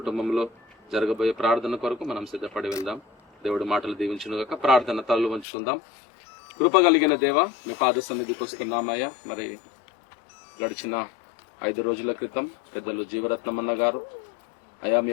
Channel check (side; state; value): right; drops out; at 5.5 s